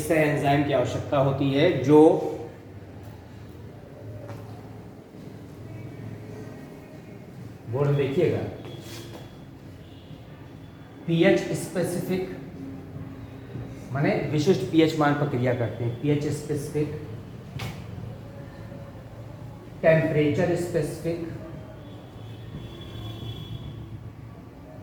एंजाइम की आवश्यकता होती है, जो बोर्ड देखिएगा, पीएच स्पेसिफिक माने विशिष्ट पीएच मान पर क्रिया करते हैं। पीएच स्पेसिफिक, टेम्परेचर स्पेसिफिक,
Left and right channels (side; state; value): both; identical; correlation 1.00